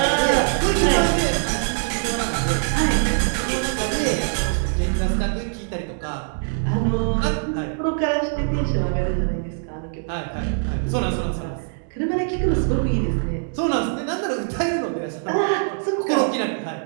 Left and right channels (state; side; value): silent; left; digital silence